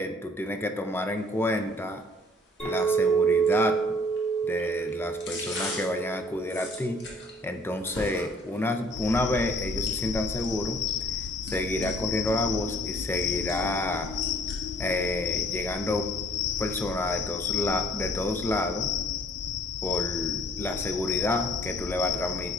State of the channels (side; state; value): both; normal; correlation 0.57